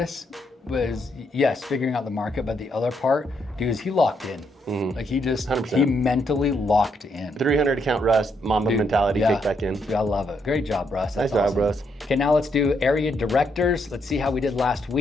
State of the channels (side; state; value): both; normal; correlation 0.76